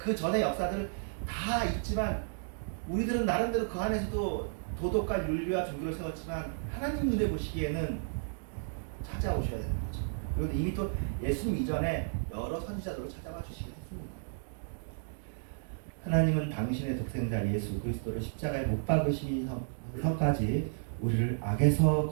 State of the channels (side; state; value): left; silent; digital silence